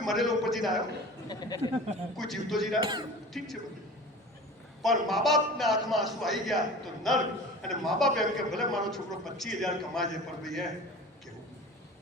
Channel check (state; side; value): normal; both; correlation 0.38